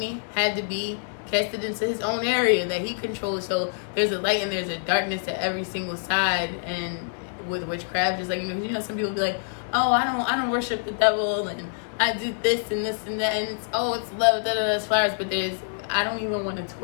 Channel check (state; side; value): silent; right; digital silence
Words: had to be casted into his own area that he controls. So there's a light and there's a darkness to every single side. And with witchcraft, just like, you know, some people be like, oh, I don't worship the devil and I do this and this and that, and it's love, it's flowers. But I don't even want to